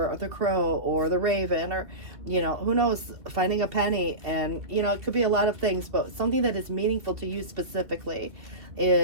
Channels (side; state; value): left; late; 2.7 ms